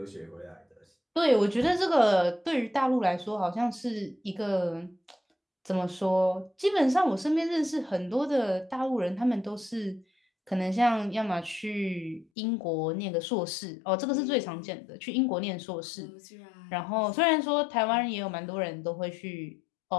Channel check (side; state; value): right; drops out; at 12.2 s